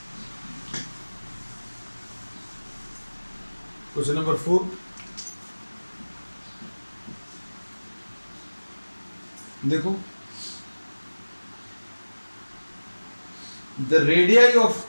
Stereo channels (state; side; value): inverted; both; correlation -1.00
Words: क्वेश्चन नंबर 4, देखो the radii of